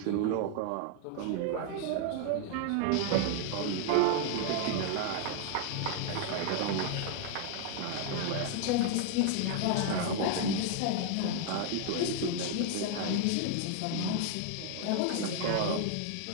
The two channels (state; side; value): different; both; correlation 0.00